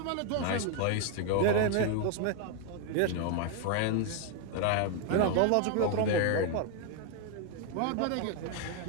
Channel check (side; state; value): both; different; correlation 0.01